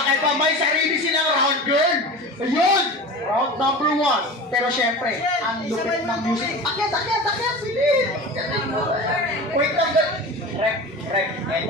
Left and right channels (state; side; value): normal; both; correlation 0.32